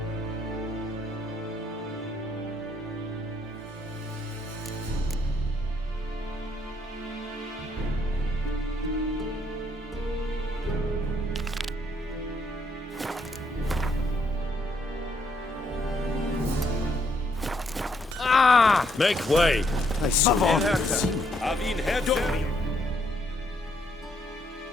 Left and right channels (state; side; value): normal; both; correlation 0.72